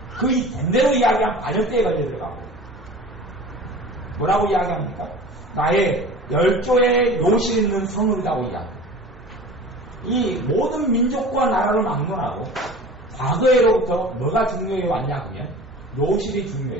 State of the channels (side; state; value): both; normal; correlation 0.39